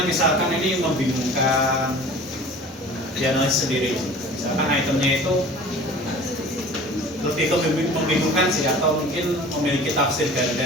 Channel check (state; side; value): normal; both; correlation 0.43